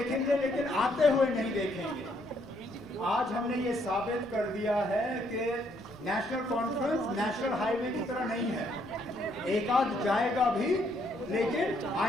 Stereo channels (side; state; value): both; normal; correlation 0.70